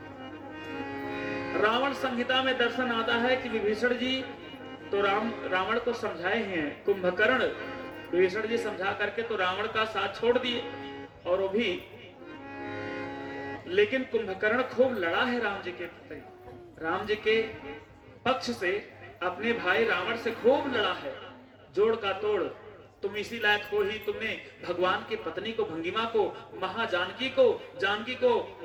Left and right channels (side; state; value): both; identical; correlation 1.00